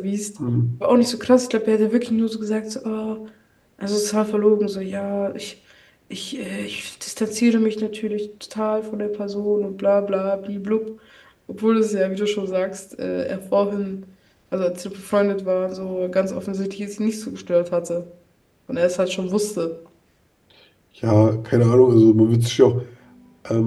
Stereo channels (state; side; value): identical; both; correlation 1.00